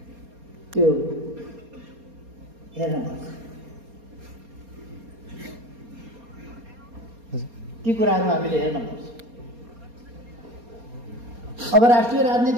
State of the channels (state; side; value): late; left; 4.3 ms